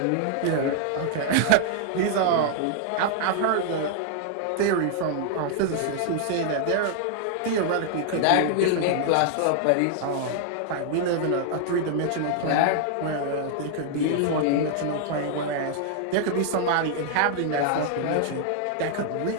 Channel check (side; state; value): both; different; correlation 0.00